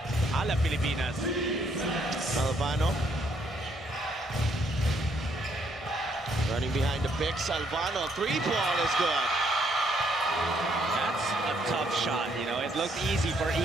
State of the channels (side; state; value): both; normal; correlation 0.70